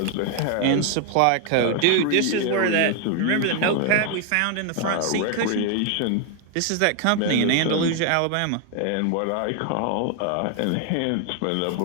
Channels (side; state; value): both; different; correlation 0.00